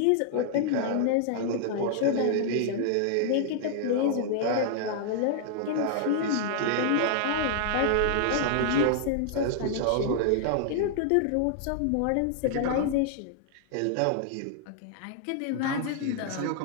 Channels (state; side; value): different; both; correlation -0.01